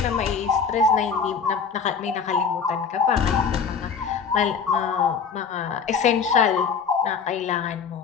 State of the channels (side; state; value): right; quieter; 6.1 dB